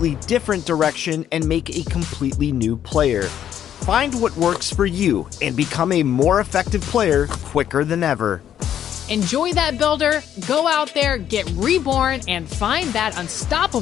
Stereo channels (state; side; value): quieter; right; 10.1 dB